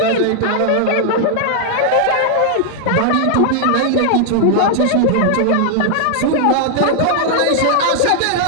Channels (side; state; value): both; different; correlation 0.00